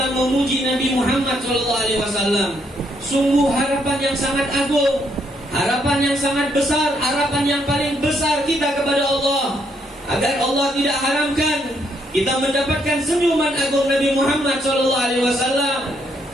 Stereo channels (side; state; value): both; normal; correlation 0.73